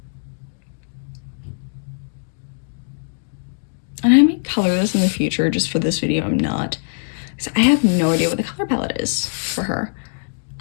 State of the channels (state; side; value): silent; right; digital silence